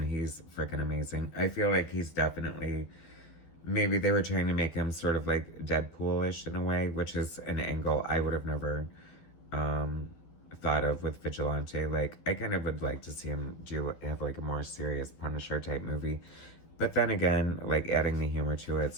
he's freaking amazing. I feel like he's definitely, maybe they were trying to make him sort of like Deadpool-ish in a way, which is an angle I would have never thought of with Vigilante. Like, I kind of would like to see him have like a more serious Punisher type movie. But then again, like, adding the humor to it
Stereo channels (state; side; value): late; right; 12 ms